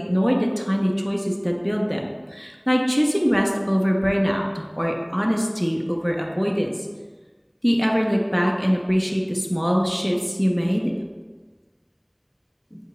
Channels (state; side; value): identical; both; correlation 1.00